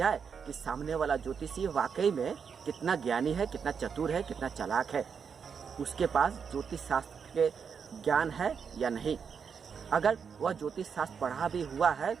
कि सामने वाला ज्योतिषी वाकई में कितना ज्ञानी है, कितना चतुर है, कितना चालाक है, उसके पास ज्योतिष शास्त्र के ज्ञान है या नहीं। अगर वह ज्योतिष शास्त्र पढ़ा भी हुआ है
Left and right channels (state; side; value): quieter; left; 6.5 dB